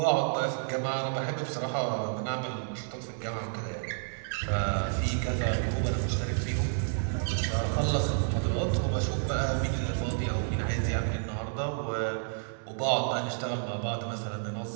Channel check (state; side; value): silent; left; digital silence